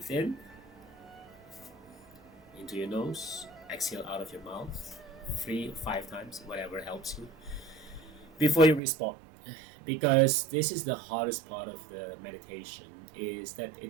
in into your nose, exhale out of your mouth 3 or 5 times, whatever helps you, before you respond. Because this is the hardest part of the meditation, is that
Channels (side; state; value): left; drops out; at 8.8 s